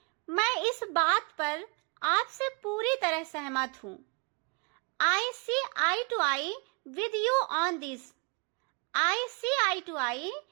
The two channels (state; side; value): quieter; left; 33.0 dB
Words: मैं इस बात पर आपसे पूरी तरह सहमत हूँ. I see eye to eye with you on this. I see eye to eye